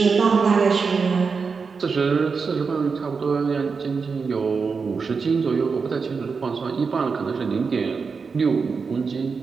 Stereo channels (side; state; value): left; quieter; 5.1 dB